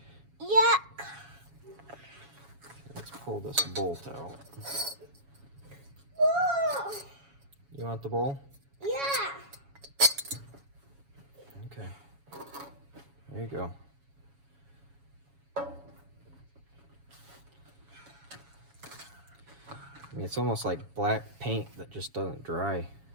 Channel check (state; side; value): late; left; 7.2 ms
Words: Yuck. Let's pull this bolt out. Whoa. You want the bowl? Yeah. Okay. There you go. I mean, it's almost like black paint that just doesn't dry.